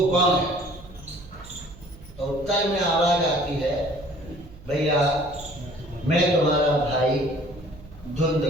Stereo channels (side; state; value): right; noise; hum, 20 dB below the sound